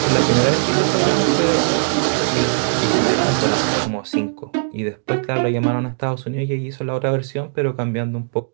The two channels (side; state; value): left; silent; digital silence